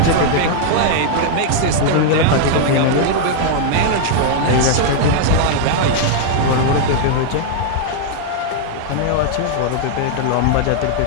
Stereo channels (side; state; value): both; different; correlation 0.00